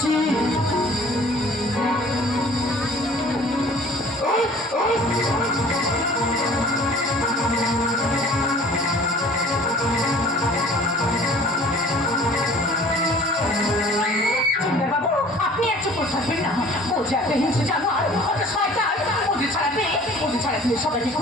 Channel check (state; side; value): normal; both; correlation 0.49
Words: আপনি এক চুপ থাকবেন না। ও যে একটা হিংসে জানোয়ার, ওটা শয়তান। ওদের ছাড়াতে সবাইকে